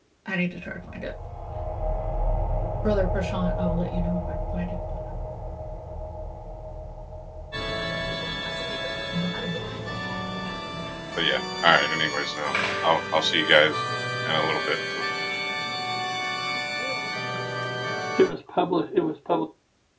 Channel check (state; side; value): identical; both; correlation 1.00